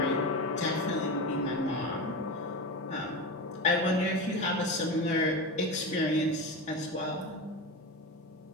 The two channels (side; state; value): both; normal; correlation 0.23